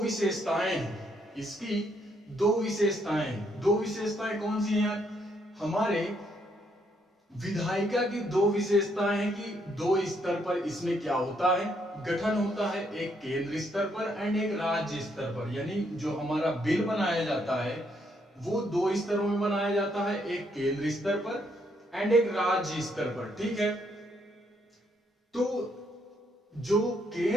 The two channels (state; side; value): normal; both; correlation 0.73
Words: हैं, इसकी दो विशेषताएं हैं। दो विशेषताएं कौन सी हैं यार, हमारे विधायिका की दो विशेषताएं हैं कि दो स्तर पर इसमें क्या होता है, गठन होता है, एक केंद्र स्तर पर एंड एक राज्य स्तर पर। यानी जो हमारा बिल बनाया जाता है वो दो स्तरों में बनाया जाता है, एक केंद्र स्तर पर एंड एक राज्य स्तर पर। ठीक है, तो जो